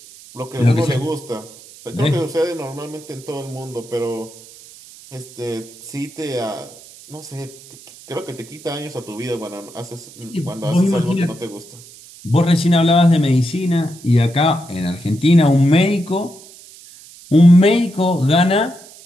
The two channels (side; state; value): right; noise; hiss, 20 dB below the sound